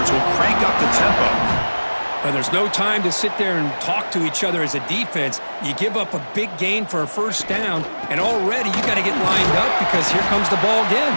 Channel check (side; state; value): both; inverted; correlation -1.00